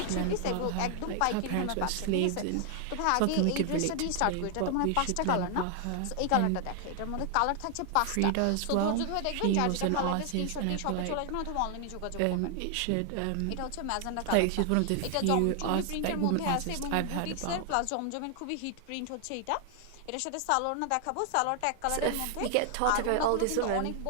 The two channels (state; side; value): different; both; correlation 0.00